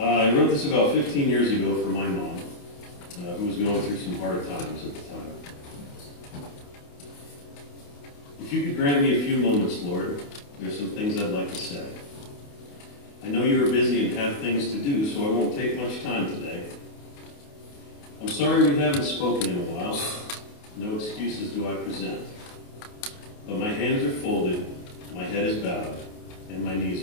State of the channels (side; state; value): right; late; 28 ms